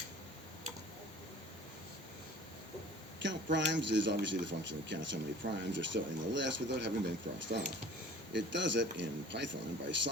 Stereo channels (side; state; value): both; normal; correlation 0.46